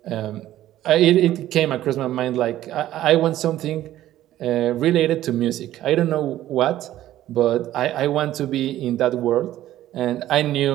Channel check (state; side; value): quieter; left; 13.6 dB